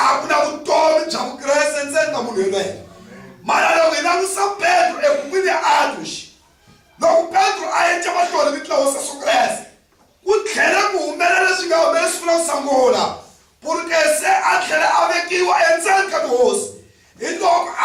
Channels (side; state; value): both; identical; correlation 1.00